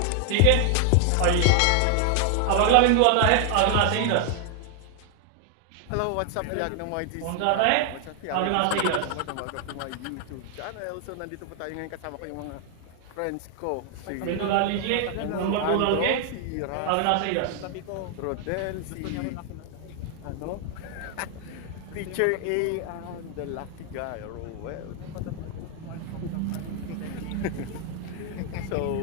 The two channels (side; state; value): both; different; correlation 0.00